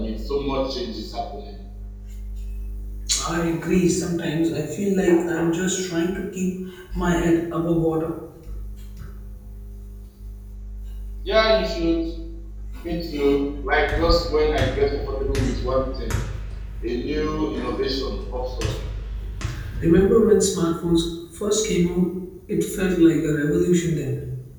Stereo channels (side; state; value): both; identical; correlation 1.00